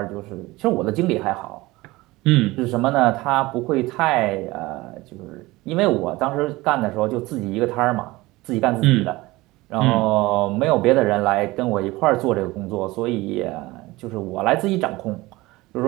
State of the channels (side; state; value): left; quieter; 20.2 dB